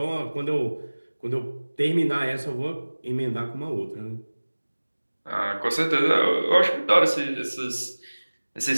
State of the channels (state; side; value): inverted; both; correlation -1.00